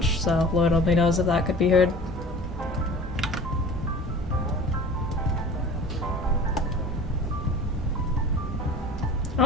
so Lord only knows if that could be heard. I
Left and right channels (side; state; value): both; normal; correlation 0.41